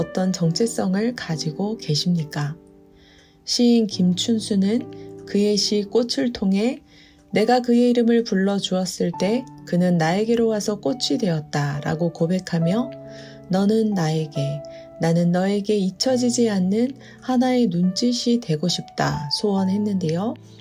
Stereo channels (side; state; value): both; identical; correlation 1.00